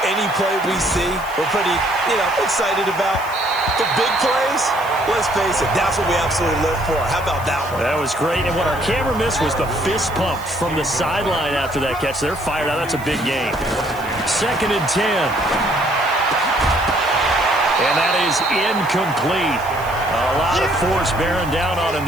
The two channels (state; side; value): noise; right; hiss, 19 dB below the sound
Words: any play we see, we're pretty, excited about. The big plays, let's face it, that's what we absolutely live for. How about that one? That was great, and what our camera missed was the fist pump from the sideline after that catch. They're fired out. That's a big game. 2nd and 10. And that is incomplete. A lot of force bearing down on him